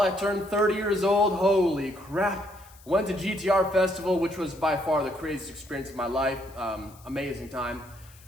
I turned 30 years old. Holy crap. Went to GTR Festival, which was by far the craziest experience of my life. Amazing time.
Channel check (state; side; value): noise; left; hiss, 25 dB below the sound